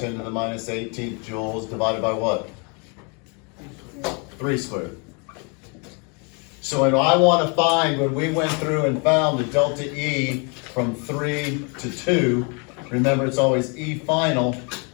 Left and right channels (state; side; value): quieter; right; 34.3 dB